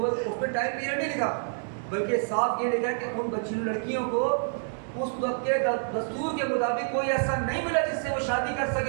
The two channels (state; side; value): silent; left; digital silence